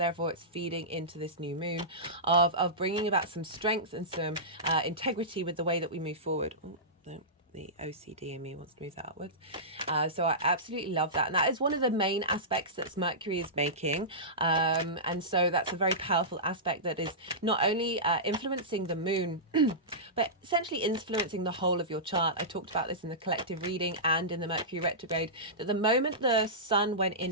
it's feeding into this new moon of bringing about some strength and some integrity with the way that we move forward. Oh, no. The OCD in me wants to move that outwards. So I absolutely love that. And that is one of the main aspects that Mercury is making. And so that's a very powerful aspect that is not only influencing the moon, but essentially influencing the whole of your chart. I talked about this in the collective reading and in the Mercury retrograde, that the moment the sun went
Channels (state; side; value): normal; both; correlation -0.17